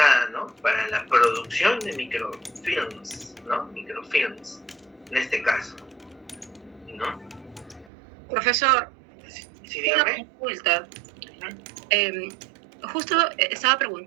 ¿no?, para la producción de microfilms, ¿no? Microfilms, en este caso, ¿no? Profesor, Sí, una dígame. consulta. Justo estaba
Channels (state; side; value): drops out; left; at 7.9 s